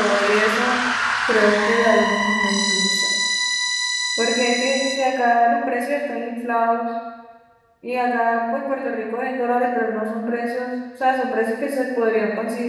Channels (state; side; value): identical; both; correlation 1.00